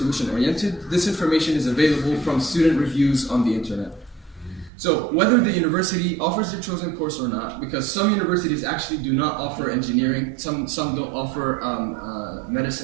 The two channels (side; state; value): left; drops out; at 4.7 s